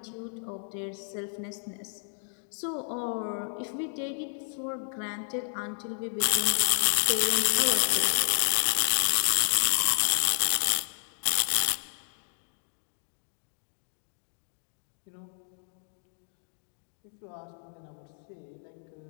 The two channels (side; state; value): right; silent; 57 dB below the other